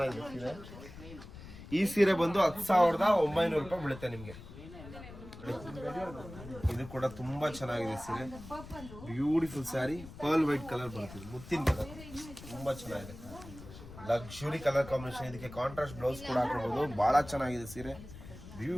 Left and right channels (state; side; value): noise; left; rumble, 15 dB below the sound